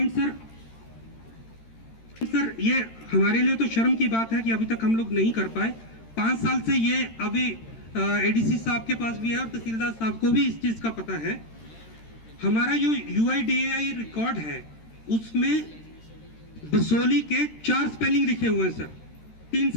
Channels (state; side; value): late; right; 13 ms